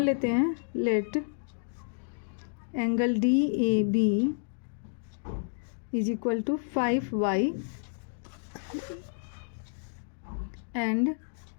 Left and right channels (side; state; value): right; silent; digital silence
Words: लेते हैं, let angle DAB is equal to 5y and